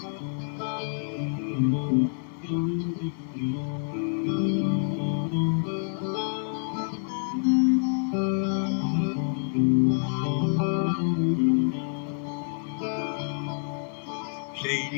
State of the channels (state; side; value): silent; right; 60 dB below the other